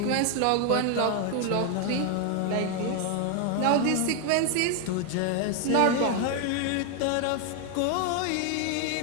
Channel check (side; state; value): both; different; correlation 0.00